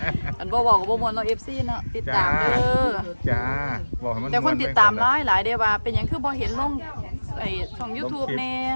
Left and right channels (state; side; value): inverted; both; correlation -1.00